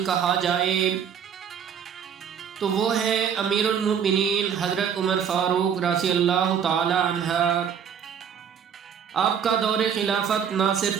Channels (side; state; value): left; quieter; 7.9 dB